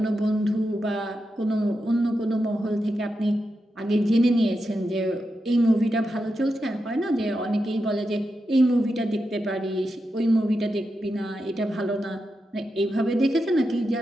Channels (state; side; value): normal; both; correlation 0.88